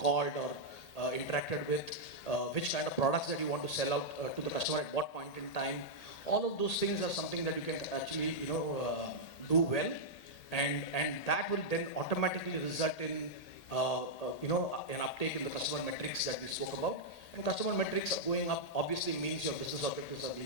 or interacted with, which kind of products that you want to sell out to the customer at what point in time. All of those things are something that you can actually do well, and that will then automatically result in an uptake in the customer metrics that we spoke about. And customer metrics going up obviously means your business objectives are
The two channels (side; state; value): right; late; 1.8 ms